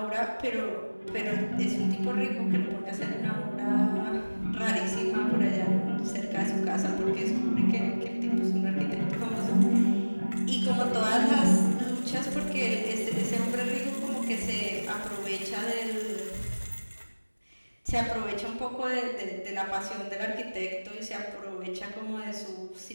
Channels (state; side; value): inverted; both; correlation -1.00